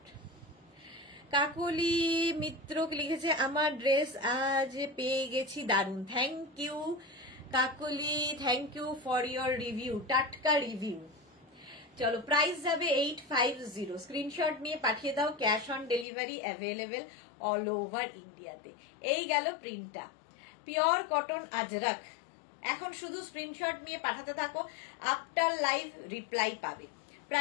কাকলি মিত্র লিখেছে আমার ড্রেস আজ পেয়ে গেছি, দারুন, thank you Kakali, thank you for your review, টাটকা রিভিউ। চলো, প্রাইস যাবে 850, স্ক্রিনশট নিয়ে পাঠিয়ে দাও, cash on delivery available all over ইন্ডিয়াতে। এই গেল প্রিন্টটা, পিওর কটন আজরক। এখন শুধু স্ক্রিনশট নিয়ে পাঠাতে থাকো, আফটার লাইভ রিপ্লাই পাবে।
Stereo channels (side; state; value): right; drops out; at 16.1 s